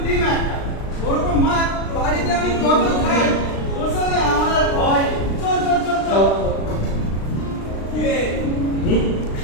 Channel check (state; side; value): late; right; 36 ms